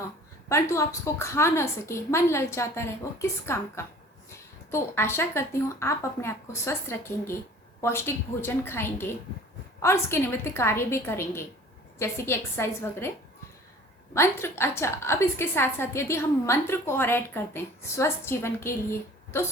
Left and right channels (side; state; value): both; normal; correlation 0.47